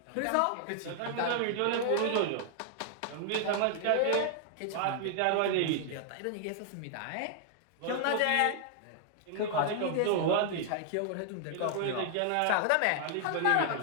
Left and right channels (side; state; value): both; different; correlation -0.01